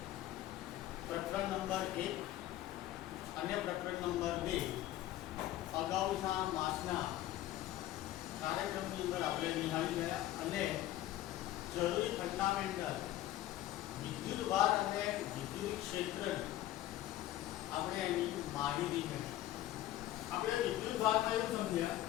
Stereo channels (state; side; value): quieter; right; 14.2 dB